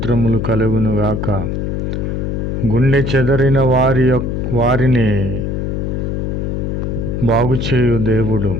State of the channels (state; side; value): noise; left; hum, 2 dB below the sound